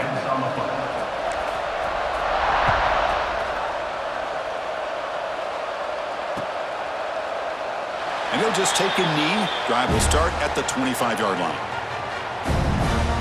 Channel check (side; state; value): both; identical; correlation 1.00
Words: And he'll just take a knee. Drive will start at the 25-yard line.